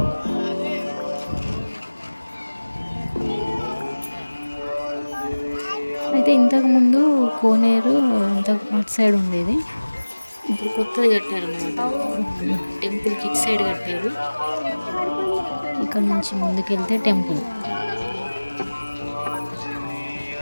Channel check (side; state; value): both; inverted; correlation -1.00